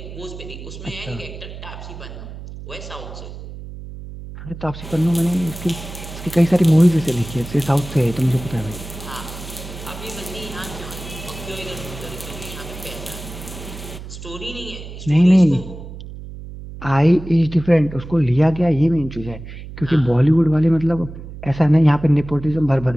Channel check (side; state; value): right; noise; hum, 12 dB below the sound